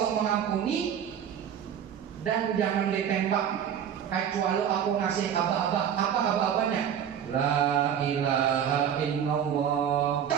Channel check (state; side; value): quieter; left; 8.9 dB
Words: mengampuni, dan jangan ditembak kecuali aku ngasih aba-aba. Apa aba-abanya? La ilaha illallah.